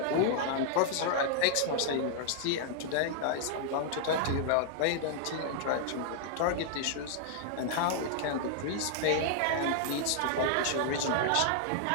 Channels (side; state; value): both; different; correlation -0.01